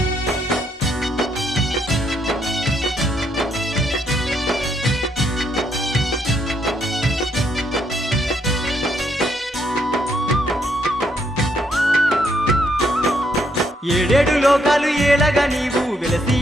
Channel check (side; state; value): both; normal; correlation 0.74